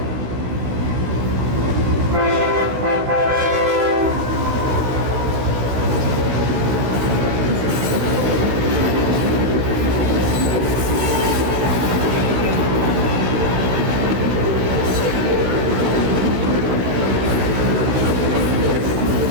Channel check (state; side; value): late; left; 16 ms